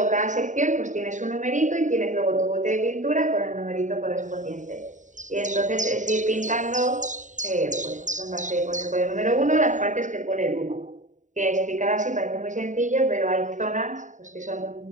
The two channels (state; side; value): late; left; 0.36 ms